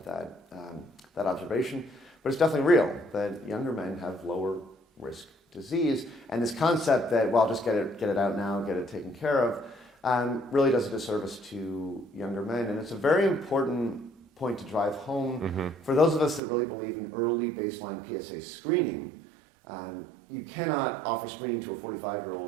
observation. But it's definitely real that younger men have lower risk disease. And this concept that, well, just get it out now, get it taken care of, really does a disservice to younger men. And it's a very important point to drive home for those of us that really believe in early baseline PSA screening. You cannot offer screening to a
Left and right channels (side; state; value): left; drops out; at 16.4 s